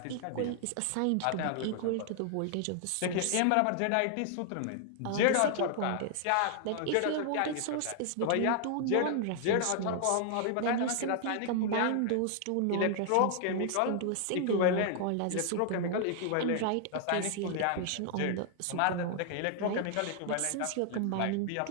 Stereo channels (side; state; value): both; different; correlation 0.00